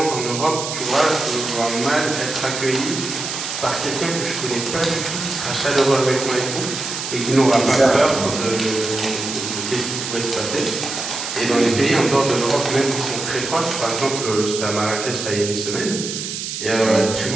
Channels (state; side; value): noise; right; hiss, 5 dB below the sound